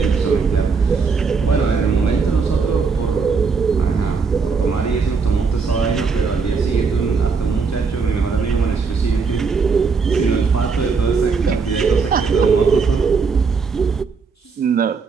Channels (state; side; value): quieter; left; 5.1 dB